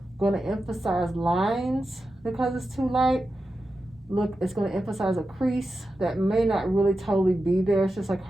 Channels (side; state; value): both; normal; correlation 0.91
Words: going to emphasize lines because it's too light. Look, it's going to emphasize a crease that may not really totally be there. It's just like